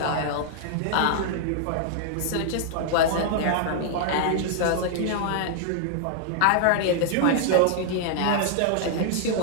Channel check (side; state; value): both; different; correlation -0.01